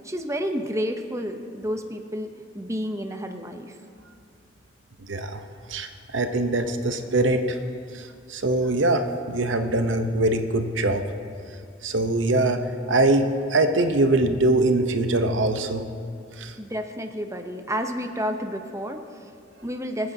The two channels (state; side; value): normal; both; correlation 0.22